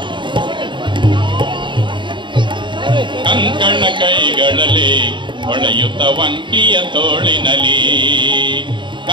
ಕಂಕಣ ಕೈಗಳಲ್ಲಿ ಹೊಳೆಯುತ್ತ ವಂಕಿಯ ತೋಳಿನಲಿ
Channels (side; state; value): left; late; 0.23 ms